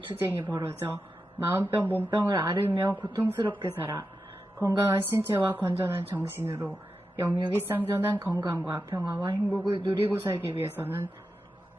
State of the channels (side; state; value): both; normal; correlation 0.90